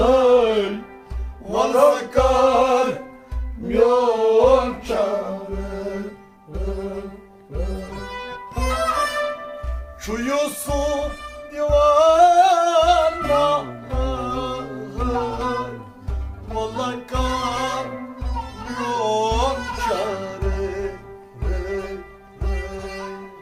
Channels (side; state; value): both; identical; correlation 1.00